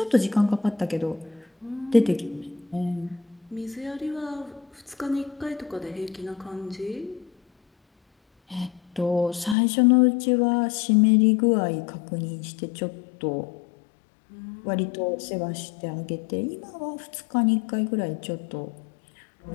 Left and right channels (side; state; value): right; drops out; at 9.6 s